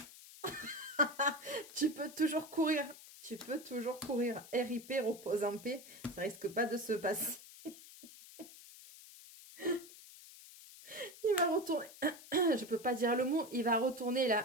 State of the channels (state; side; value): noise; left; hiss, 18 dB below the sound